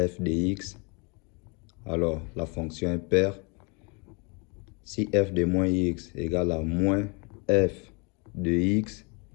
f de x, alors la fonction est paire. Si f de moins x égale à moins f de x,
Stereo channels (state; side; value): quieter; right; 32.0 dB